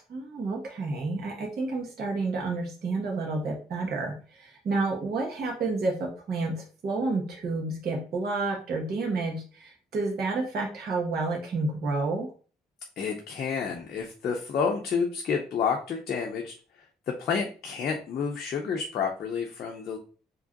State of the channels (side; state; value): both; normal; correlation 0.59